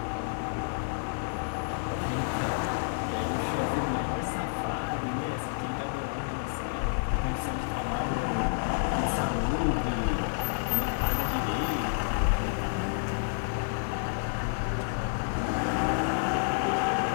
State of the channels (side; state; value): right; silent; 58 dB below the other